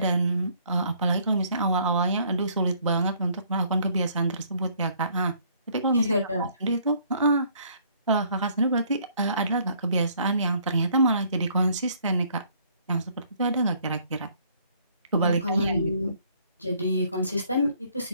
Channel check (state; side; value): inverted; both; correlation -0.63